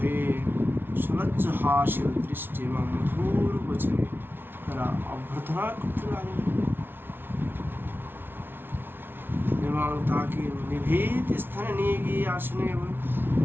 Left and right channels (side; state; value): left; late; 0.11 ms